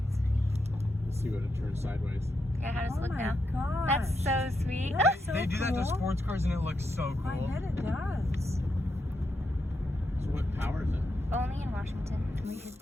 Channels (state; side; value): normal; both; correlation 0.83